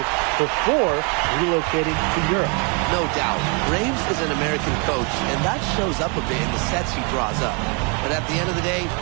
before relocating to Europe. No doubt, Graves is an American coach, and that shows up a bit in the sets he draws up. But at the end of the day,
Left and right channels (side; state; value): left; quieter; 34.4 dB